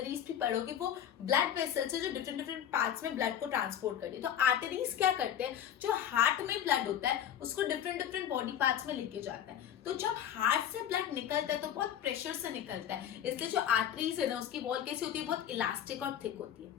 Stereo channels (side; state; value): right; quieter; 9.9 dB